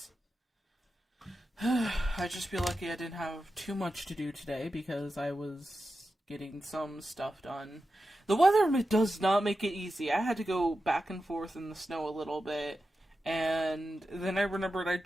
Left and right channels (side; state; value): both; normal; correlation 0.91